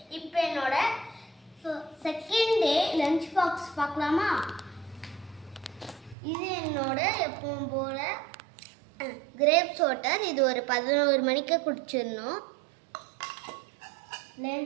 இப்போ என்னோட செகண்ட் டே லஞ்ச் பாக்ஸ் பார்க்கலாமா? இது என்னோட எப்பவும் போல கிரேப்ஸ் வாட்டர். இது ஒரு 11 மணிக்கு குடிச்சிடணும்.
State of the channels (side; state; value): left; drops out; at 6.2 s